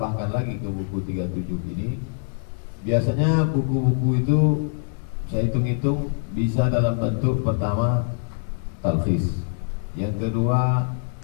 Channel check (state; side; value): silent; right; digital silence